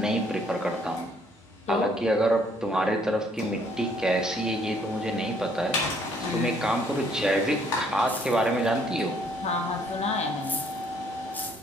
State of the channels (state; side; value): normal; both; correlation 0.64